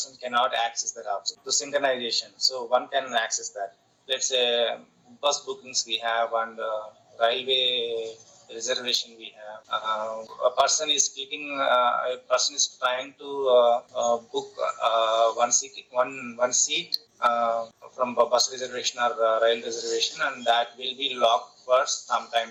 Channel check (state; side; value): identical; both; correlation 1.00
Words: cannot access that object. So synchronization. So one can access that. Let's say bus bookings we have and railway reservation we have. A person is trying to book one seat from a bus reservation or rail reservation, and that will be locked for some time,